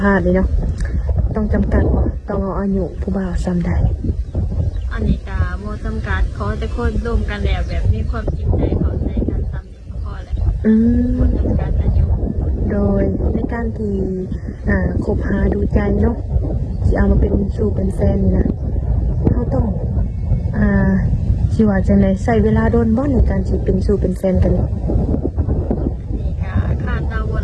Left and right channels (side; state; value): both; identical; correlation 1.00